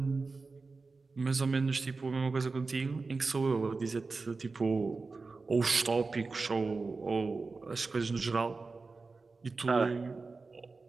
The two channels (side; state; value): left; quieter; 4.0 dB